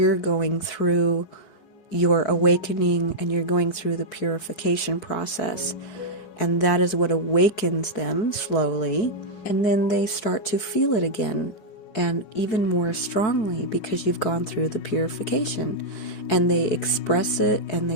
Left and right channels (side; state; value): right; late; 5.2 ms